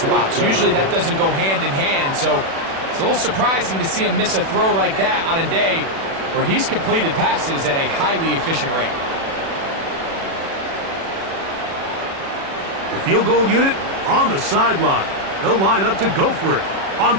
Usually that doesn't go hand in hand, so it's a little surprising to see him miss a throw like that on a day where he's completed passes at a highly efficient rate. The field goal unit on the sideline. They'll line up to go for it on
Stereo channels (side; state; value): left; late; 36 ms